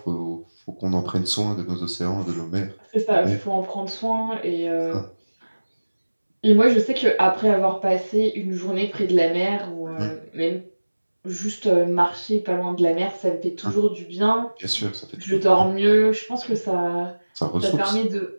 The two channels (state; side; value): inverted; both; correlation -1.00